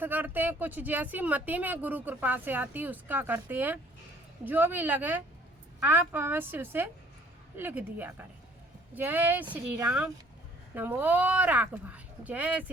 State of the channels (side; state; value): both; normal; correlation 0.58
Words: करते हैं, कुछ जैसी मति में गुरु कृपा से आती उसका करते हैं। जो भी लगे आप अवश्य उसे लिख दिया करें। जय श्री राम, नमो राघवाय। जय